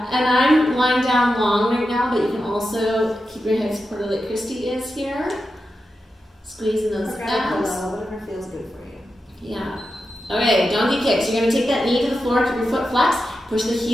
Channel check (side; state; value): both; normal; correlation 0.90